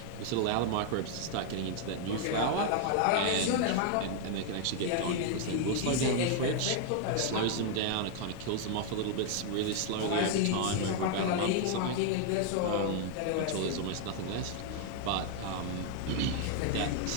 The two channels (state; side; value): different; both; correlation 0.00